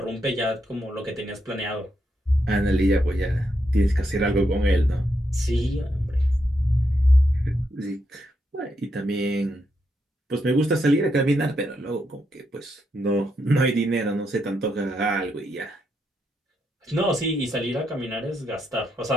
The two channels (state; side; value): normal; both; correlation 0.81